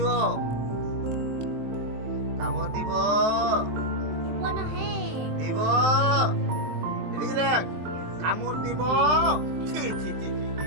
কামড় দিব, দিব, এদিকে দেখ, কামড় দিব। ছি ছি ছি ছি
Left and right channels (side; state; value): left; late; 23 ms